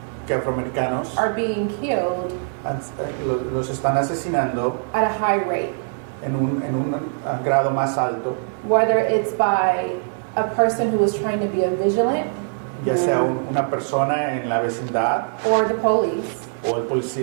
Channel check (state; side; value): silent; left; 63 dB below the other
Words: que afroamericanos are being killed los están asesinando at a high rate, en un grado más alto, whether it's by a person who is trying to be a vigilant ya sea una persona en la vecindad or the police, o